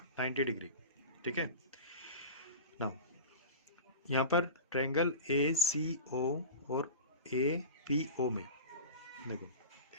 degree, ठीक है। नाउ यहाँ पर ट्रायंगल ए सी ओ और ए पी ओ में देखो,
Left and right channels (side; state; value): both; inverted; correlation -0.31